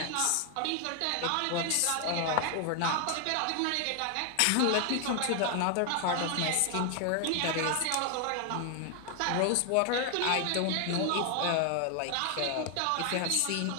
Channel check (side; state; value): both; different; correlation 0.00